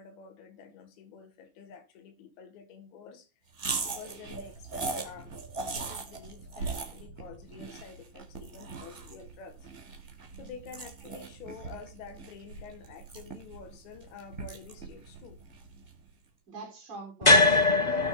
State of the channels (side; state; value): right; late; 1.9 ms